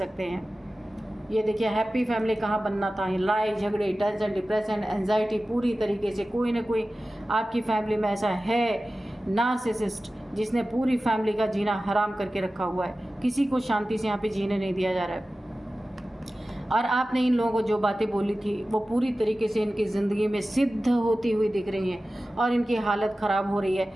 हैं। ये देखिए हैप्पी फैमिली कहाँ बनना था, लड़ाई झगड़े, टेंशन, डिप्रेशन, एंजाइटी, पूरी तरीके से कोई ना कोई आपकी फैमिली में ऐसा है नार्सिसिस्ट जिसने पूरी फैमिली का जीना हराम करके रखा हुआ है। किसी को शांति से यहाँ पे जीने नहीं दिया जा रहा है। और आपने इन लोगों को जो बातें बोली थी वो पूरी तरीके से इनकी ज़िंदगी में सिद्ध होती हुई दिख रही हैं और इनकी हालत ख़राब हो रही है,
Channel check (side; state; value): both; normal; correlation 0.95